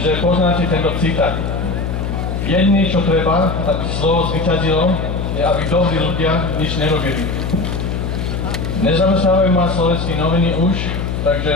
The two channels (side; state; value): left; noise; hum, 3 dB below the sound